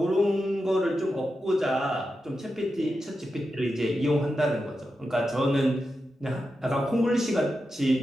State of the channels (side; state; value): both; normal; correlation 0.89